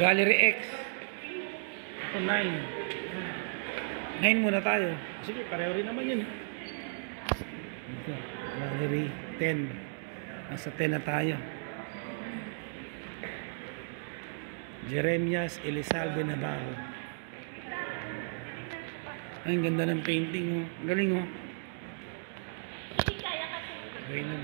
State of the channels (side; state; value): left; silent; digital silence